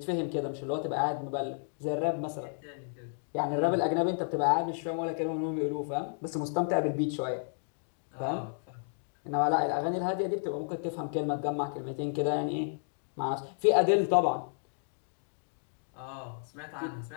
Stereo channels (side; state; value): right; silent; digital silence